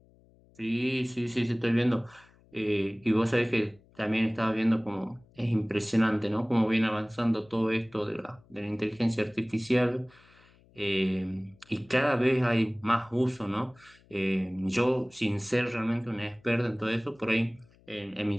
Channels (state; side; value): noise; left; hum, 29 dB below the sound